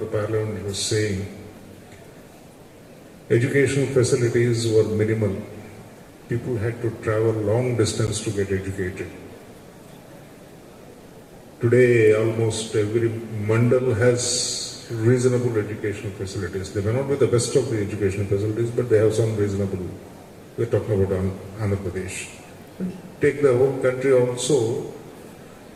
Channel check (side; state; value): both; identical; correlation 1.00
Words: the parliament, was saying educational facilities were minimal. People had to travel long distance to get educated. Today, almost every mandal has reasonable educational facilities. They may not be the best of the educational facilities, but they have some reasonable. We're talking about Andhra Pradesh. Take the whole country also,